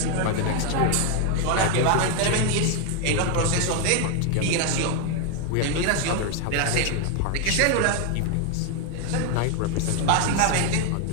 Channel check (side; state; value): both; different; correlation 0.01